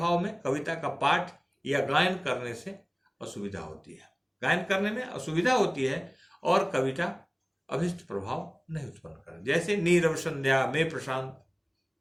में कविता का पाठ या गायन करने से असुविधा होती है, गायन करने में असुविधा होती है और कविता अभिष्ट प्रभाव नहीं उत्पन्न कर। जैसे नीरव संध्या में प्रशांत,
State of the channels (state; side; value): identical; both; correlation 1.00